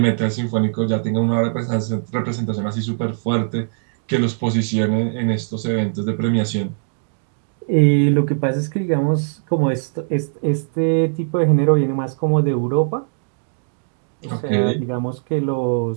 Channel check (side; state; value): left; silent; digital silence